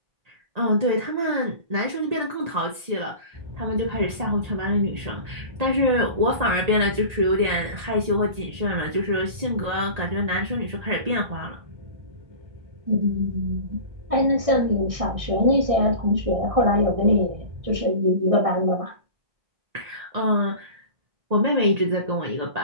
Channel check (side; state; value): left; late; 1.8 ms